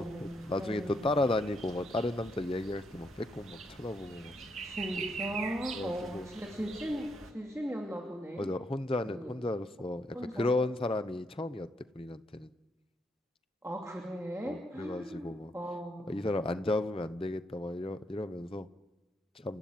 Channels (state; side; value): normal; both; correlation 0.76